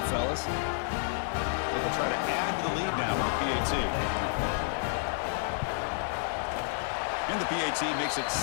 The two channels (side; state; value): right; silent; digital silence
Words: fellas. They'll try to add to the lead now with the PAT. And the PAT makes it